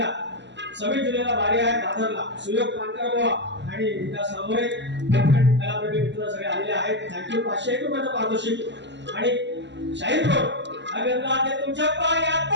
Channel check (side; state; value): left; late; 0.52 ms